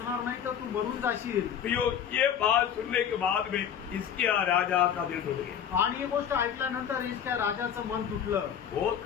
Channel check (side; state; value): right; quieter; 8.7 dB